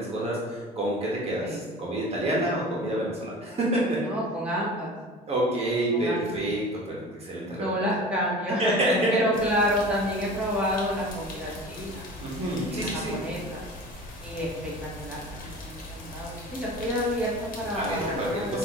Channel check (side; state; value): both; normal; correlation 0.38